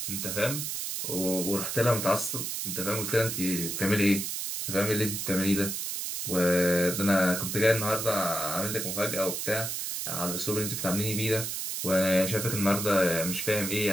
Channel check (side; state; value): right; noise; hiss, 3 dB below the sound